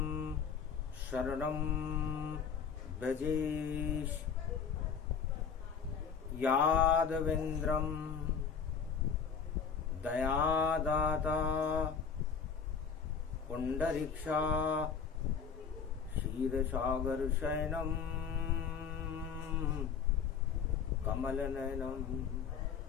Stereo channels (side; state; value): right; quieter; 6.5 dB